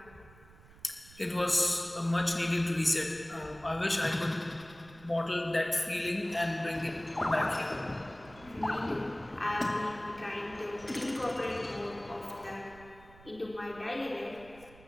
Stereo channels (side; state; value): right; noise; rumble, 22 dB below the sound